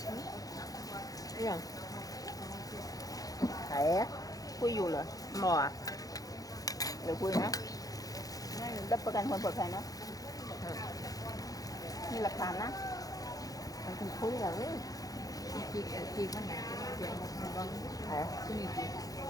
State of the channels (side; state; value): right; late; 0.17 ms